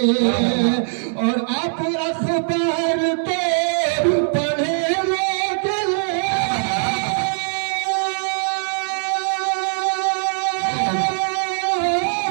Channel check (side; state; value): left; silent; 65 dB below the other